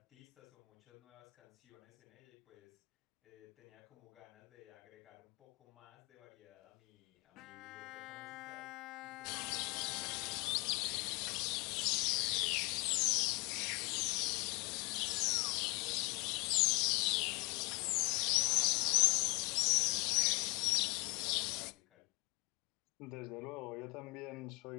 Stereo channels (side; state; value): right; quieter; 27.0 dB